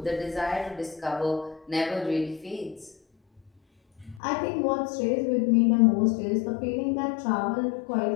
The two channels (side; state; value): right; drops out; at 4.2 s